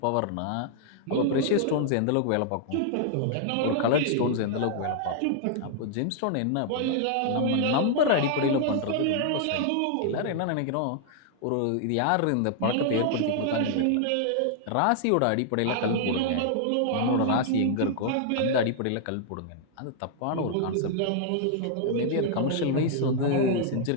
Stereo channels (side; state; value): both; different; correlation -0.01